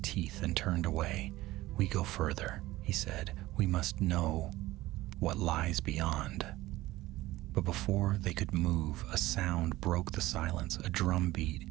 and turned away. "We go further," he said. "We must know what lies beyond." But before they could move, a sound broke the silence, a drum beat,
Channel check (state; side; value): quieter; left; 17.5 dB